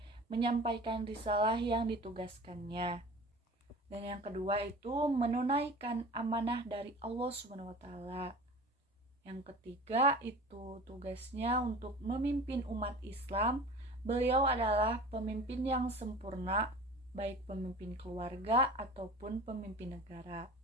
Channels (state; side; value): normal; both; correlation 0.39